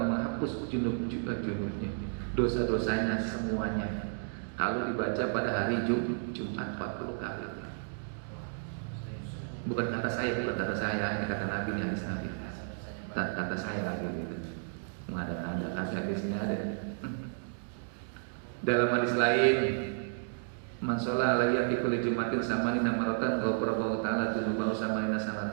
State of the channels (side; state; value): left; silent; digital silence